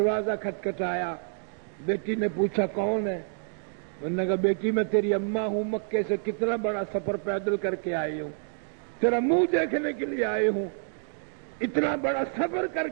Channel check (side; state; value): left; silent; digital silence